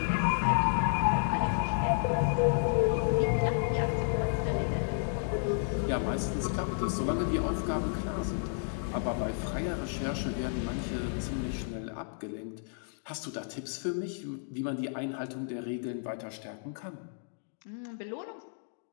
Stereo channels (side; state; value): right; silent; digital silence